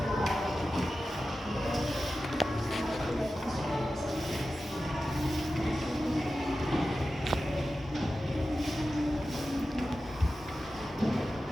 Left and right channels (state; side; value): normal; both; correlation 0.93